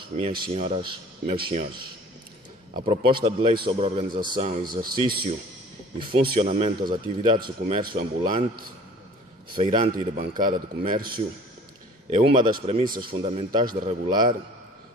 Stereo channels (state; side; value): normal; both; correlation 0.48